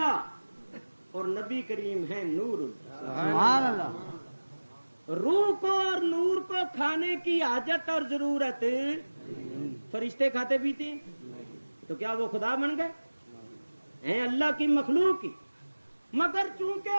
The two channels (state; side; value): inverted; both; correlation -1.00